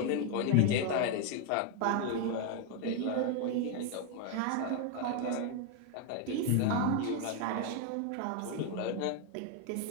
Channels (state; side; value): different; both; correlation 0.01